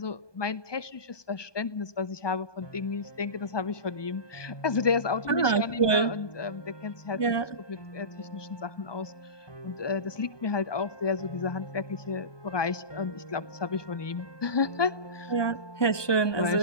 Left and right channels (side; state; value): right; late; 1.2 ms